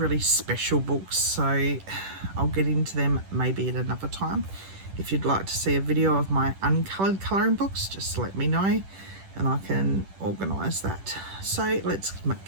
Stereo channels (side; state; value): left; late; 10 ms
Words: special books, so I'll get into them maybe at another time. If you'd like to see a video of my uncoloured colouring books, just let me know and I can organise that. So let's